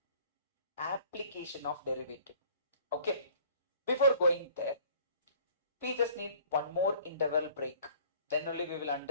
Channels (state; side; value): inverted; both; correlation -0.52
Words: of derivative. Okay, before going there, we just need one more interval break. Then only we will